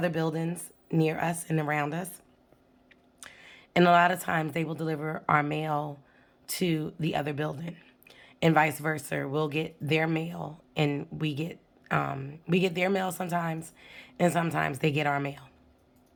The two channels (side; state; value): both; identical; correlation 1.00